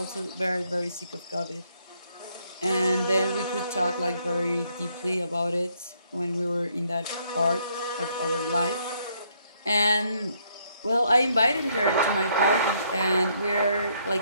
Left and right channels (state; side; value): inverted; both; correlation -0.71